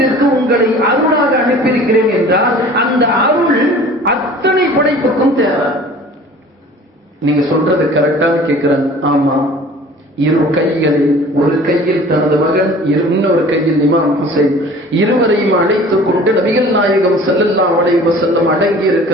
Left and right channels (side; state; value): both; normal; correlation 0.46